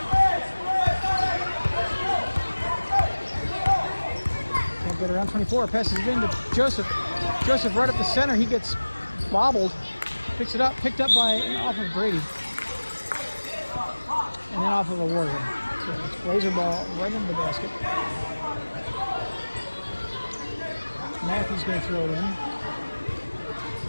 Can't get around 24. Passes it into Joseph. Joseph right up the center. He gets bobbled. Picks it up. Picked up by off of Brady. And then off of a Warrior. So it's Blazer ball right into the basket. Matthew's going to throw it in.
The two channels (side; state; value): both; inverted; correlation -1.00